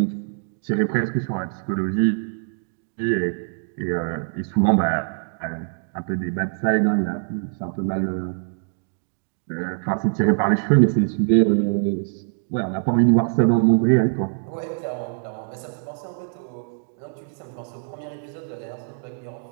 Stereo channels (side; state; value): left; silent; digital silence